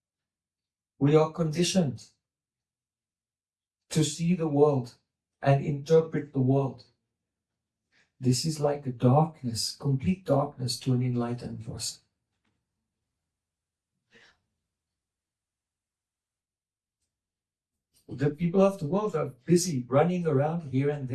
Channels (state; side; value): identical; both; correlation 1.00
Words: we are conditioned to see the world and interpret the world. This is like a darkness, complete darkness to an enlightened person. The people of the world are busy running around here and